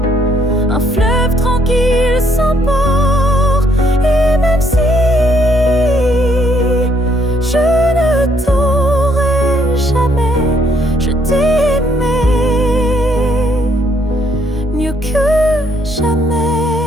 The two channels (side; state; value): both; normal; correlation 0.69